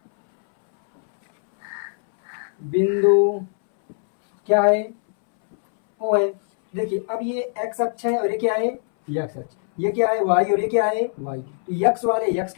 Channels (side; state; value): right; silent; 64 dB below the other